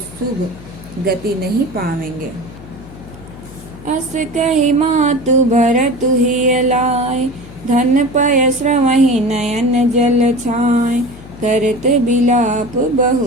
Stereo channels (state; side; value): noise; left; hum, 17 dB below the sound